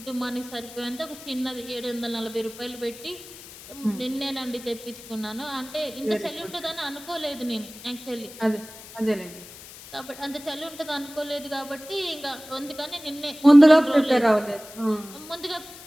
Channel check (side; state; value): left; noise; hiss, 17 dB below the sound